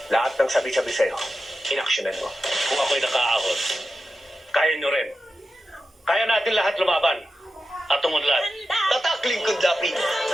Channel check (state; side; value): normal; both; correlation 0.91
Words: Lahat ng sabi-sabi sa'yo, inaksyonan mo. Kung ako'y nakaahon, kaya nyo rin. Kaya natin lahat lumaban at umunlad. Tatak Lingkod Lapid,